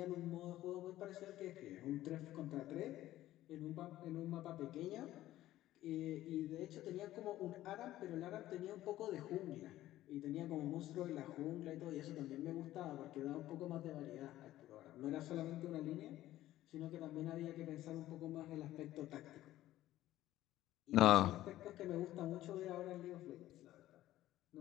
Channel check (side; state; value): right; quieter; 14.6 dB